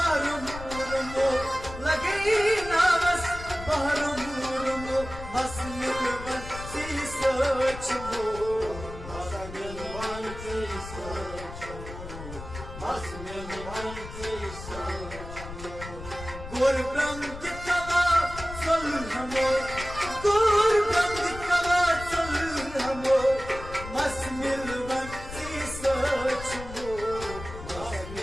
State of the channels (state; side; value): noise; left; rumble, 12 dB below the sound